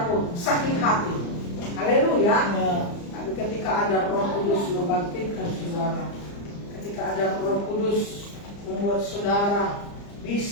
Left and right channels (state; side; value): late; right; 35 ms